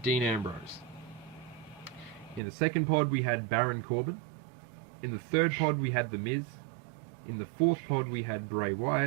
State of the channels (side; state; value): left; drops out; at 2.4 s